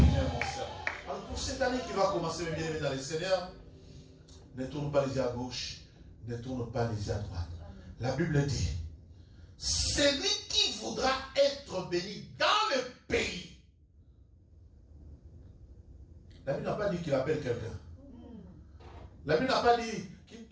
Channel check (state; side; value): identical; both; correlation 1.00